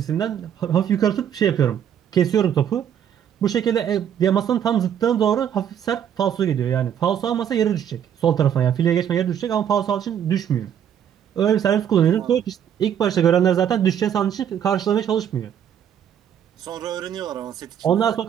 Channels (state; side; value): quieter; left; 9.2 dB